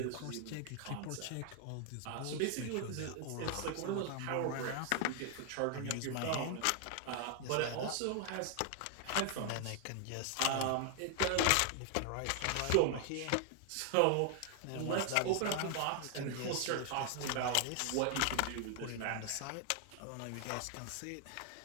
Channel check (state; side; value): different; both; correlation 0.00